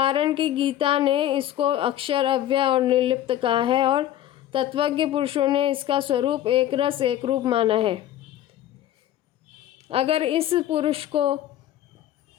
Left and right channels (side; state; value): right; quieter; 12.4 dB